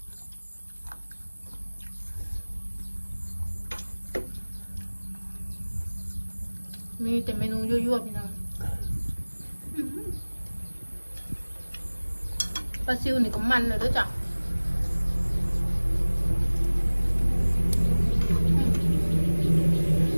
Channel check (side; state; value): both; inverted; correlation -1.00